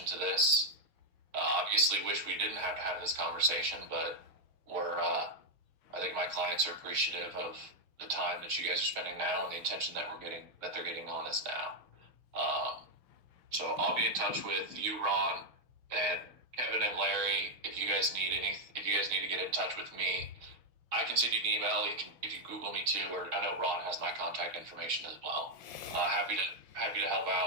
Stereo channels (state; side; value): late; left; 6.3 ms